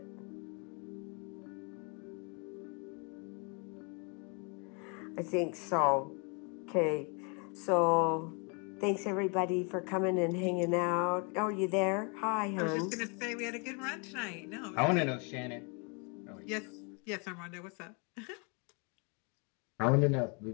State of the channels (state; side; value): quieter; right; 34.7 dB